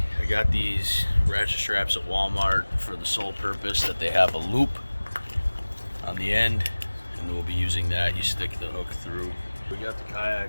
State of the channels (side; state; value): both; inverted; correlation -1.00